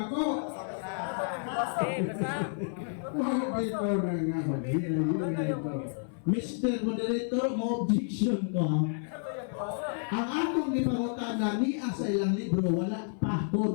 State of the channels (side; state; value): right; silent; 55 dB below the other